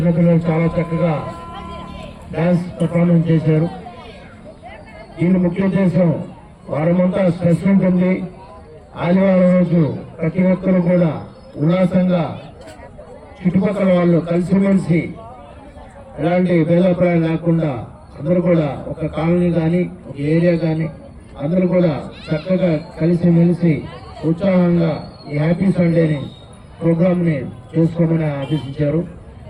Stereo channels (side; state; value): both; identical; correlation 1.00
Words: చాలా చక్కగా డ్యాన్స్ పర్ఫార్మెన్స్ చేశారు. దీని ముఖ్య ఉద్దేశం వారమంతా స్ట్రెస్ ఉంటుంది. ఆదివారం రోజు ప్రతి ఒక్కరు కూడా ఉల్లాసంగా చుట్టుపక్కల వాళ్ళు కలిసిమెలిసి ఎలాంటి భేదాభిప్రాయం లేకుండా అందరూ కూడా ఒక కాలనీ కానీ ఒక ఏరియా కానీ అందరూ కూడా చక్కగా కలిసిమెలిసి ఉత్సాహంగా ఈ హ్యాపీ సండేని ప్రోగ్రామ్ని చేసుకోమని ఆదేశించారు.